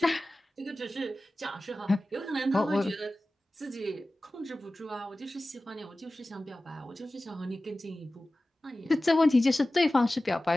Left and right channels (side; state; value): both; normal; correlation 0.96